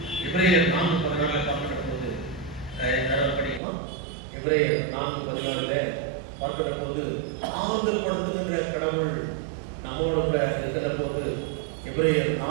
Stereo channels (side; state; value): left; drops out; at 3.6 s